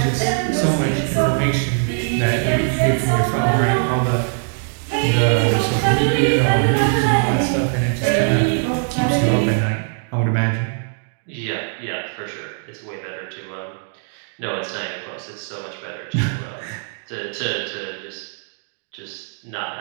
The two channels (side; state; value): left; silent; digital silence